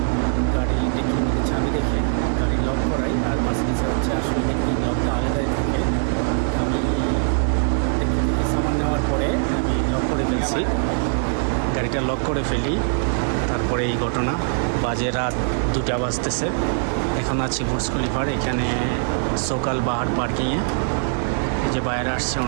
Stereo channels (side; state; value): left; silent; digital silence